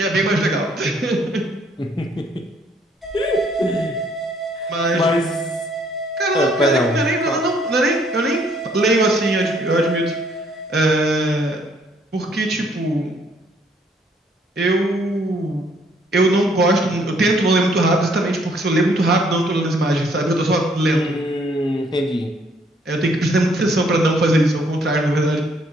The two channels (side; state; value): both; normal; correlation 0.65